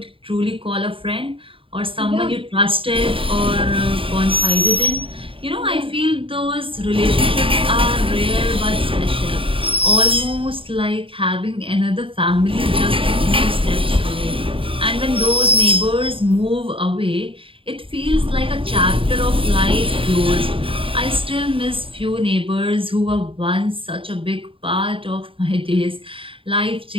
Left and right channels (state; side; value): late; left; 0.26 ms